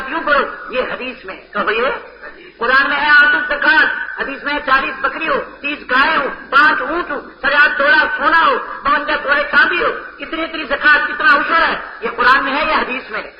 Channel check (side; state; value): both; identical; correlation 1.00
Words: یوں پڑھو. یہ حدیث میں. کہو یہ قرآن میں ہے آتو زکات، حدیث میں 40 بکری ہو، 30 گائے ہو، 5 اونٹ ہو، 50 تولا سونا ہو، 52 توڑے چاندی ہو، اتنی زکات، کتنا عشر ہے. یہ قرآن میں ہے یا حدیث میں؟